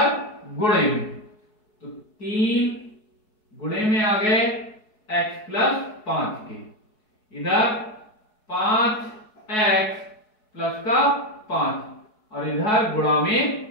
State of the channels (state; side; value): late; right; 4.7 ms